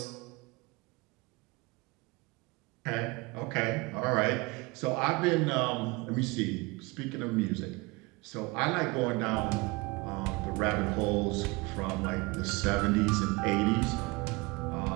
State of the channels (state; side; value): quieter; left; 25.4 dB